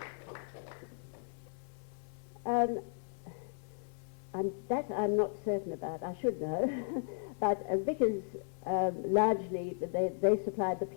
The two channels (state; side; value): silent; right; 54 dB below the other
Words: I'm not certain about. I should know. But Vickers, largely, they supplied the